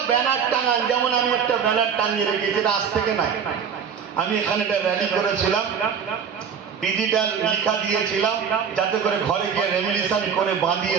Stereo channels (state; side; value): quieter; left; 7.1 dB